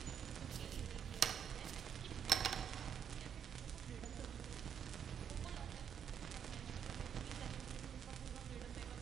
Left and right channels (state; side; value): quieter; left; 8.2 dB